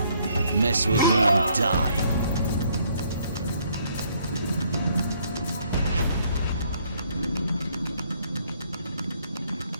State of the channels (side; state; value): both; inverted; correlation -0.66